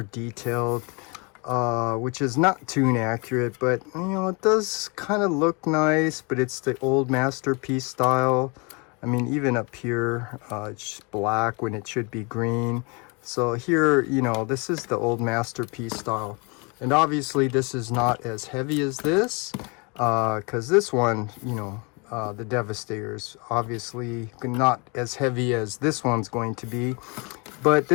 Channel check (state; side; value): quieter; right; 31.0 dB